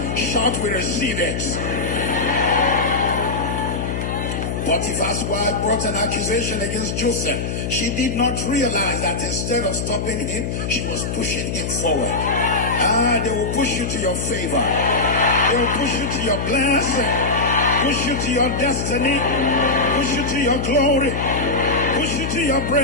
Shout, we receive it. Potiphar's wife brought an accusation against Joseph. She did not realize that instead of stopping him, she was pushing him forward. They will push you to your favor. They will push you to your blessing. Push you to your destiny. Push you to your glory. Push you to your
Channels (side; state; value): left; noise; hum, 3 dB below the sound